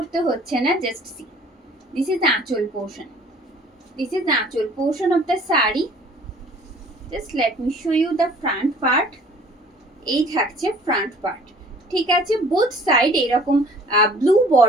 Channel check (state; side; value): normal; both; correlation 0.52